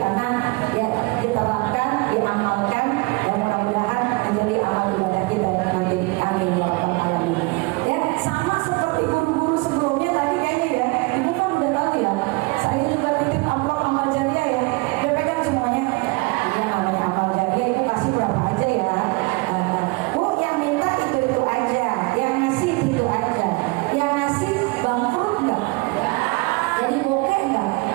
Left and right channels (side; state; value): left; quieter; 26.4 dB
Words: ya diterapkan, diamalkan, ya mudah-mudahan menjadi amal ibadah kita nanti. Amin ya rabbal alamin. Ya, sama seperti guru-guru sebelumnya tadi kayaknya ya, ibu kan udah tahu ya. Saya juga titip amplop amal jariah ya. Udah pegang semuanya. Iya, namanya amal jariah itu kasih berapa aja ya. Bu, yang minta itu aja, yang ngasih itu aja, yang ngasih bangkrut nggak? Jadi bokeh nggak?